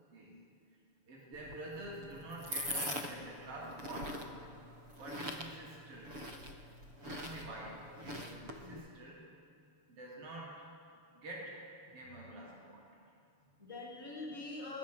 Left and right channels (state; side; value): late; left; 7.0 ms